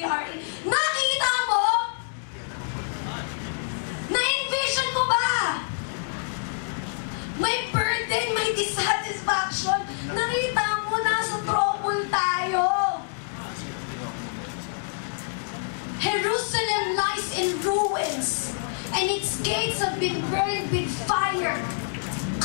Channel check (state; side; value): silent; right; digital silence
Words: in. Nakita mo? Na-envision mo ba? May burden, may dissatisfaction. Nakita mo, nasa trouble tayo. Jerusalem lies in ruins, and its gates have been burned with fire.